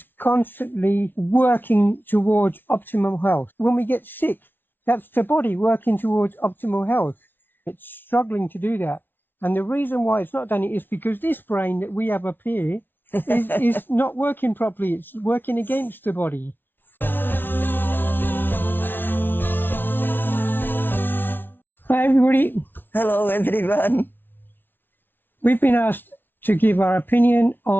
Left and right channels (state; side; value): late; right; 0.099 ms